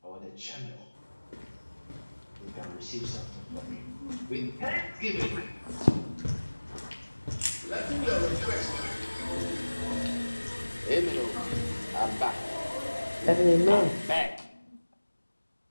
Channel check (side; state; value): both; inverted; correlation -1.00